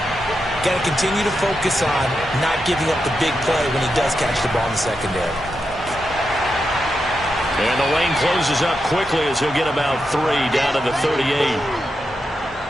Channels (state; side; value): normal; both; correlation 0.87